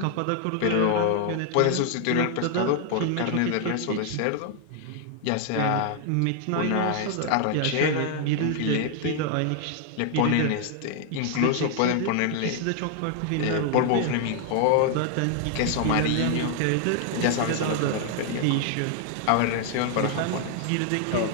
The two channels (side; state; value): both; different; correlation 0.00